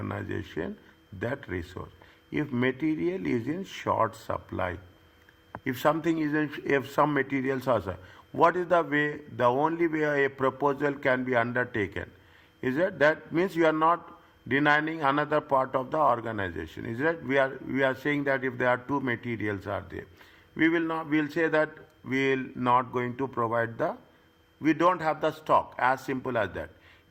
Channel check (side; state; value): both; identical; correlation 1.00